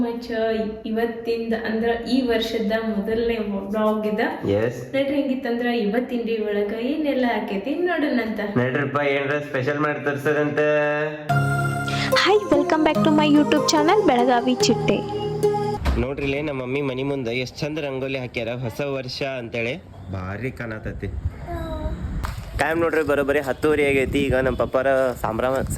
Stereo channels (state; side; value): identical; both; correlation 1.00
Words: much. ಇವತ್ತಿಂದ ಅಂದ್ರ ಈ ವರ್ಷದ ಮೊದಲನೇ ಬ್ಲಾಗ್ ಇದ. ನಡ್ರಿ ಹೆಂಗಿತ್ತಂದ್ರ ಇವತ್ತಿನ ಡೇ ಒಳಗ ಏನೆಲ್ಲ ಆಕೈತಿ ನೋಡೋಣಂತ. ನಡ್ರಿಪ್ಪ ಏನ್ರ ಸ್ಪೆಷಲ್ ಮಾಡಿ ತೋರ್ಸದಂತ. Hi, welcome back to my YouTube channel Belagavi Chitte. ನೋಡ್ರಿ ಇಲ್ಲೇ ನಮ್ಮ ಮಮ್ಮಿ ಮನಿ ಮುಂದೆ ಎಷ್ಟು ಚಂದ ರಂಗೋಲಿ ಹಾಕ್ಯಾರ ಹೊಸ ವರ್ಷ ಅಂತೇಳಿ. ಭಾರಿ ಕಾಣತತಿ. ಟೈಮ್ ನೋಡ್ರಿ ಬರೋಬ್ಬರಿ 10:30 ಆಗೈತಿ. ಈಗ ನಮ್ಮ ಪಪ್ಪಾರ